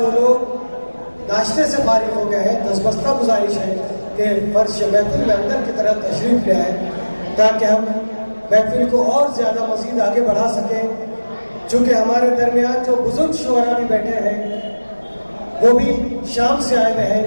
لوگ ناشتے سے فارغ ہو گئے ہیں دستبستہ گزارش ہے کہ فرش محفل میں اندر کی طرف تشریف لے آئیں تاکہ ہم محفل کو اور زیادہ مزید آگے بڑھا سکیں. چونکہ ہمارے درمیان جو بزرگ شعراء بھی بیٹھے ہیں وہ بھی شام سے آئے ہوئے ہیں،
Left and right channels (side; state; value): both; inverted; correlation -1.00